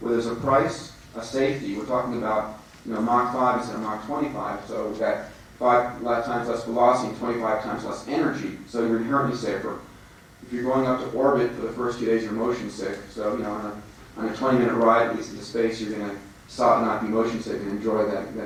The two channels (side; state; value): both; identical; correlation 1.00